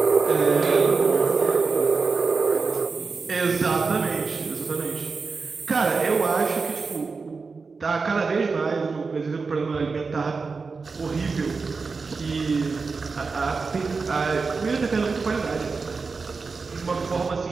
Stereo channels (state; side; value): quieter; left; 4.5 dB